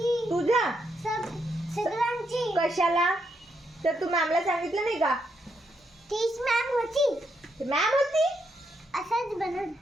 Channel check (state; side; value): normal; both; correlation 0.79